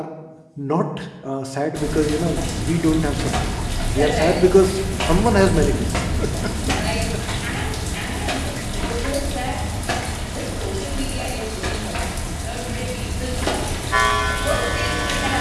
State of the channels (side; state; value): both; identical; correlation 1.00